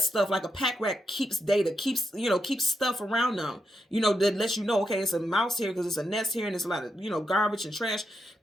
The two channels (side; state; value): both; normal; correlation 0.84